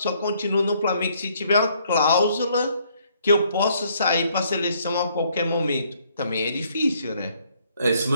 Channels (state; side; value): inverted; both; correlation -0.67